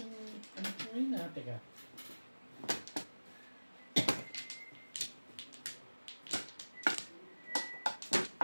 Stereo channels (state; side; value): inverted; both; correlation -1.00